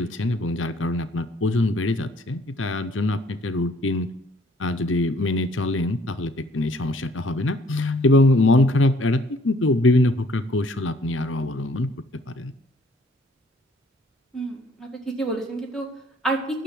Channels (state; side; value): normal; both; correlation 0.59